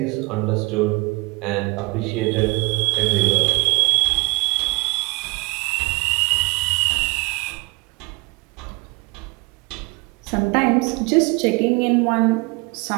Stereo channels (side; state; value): left; quieter; 27.4 dB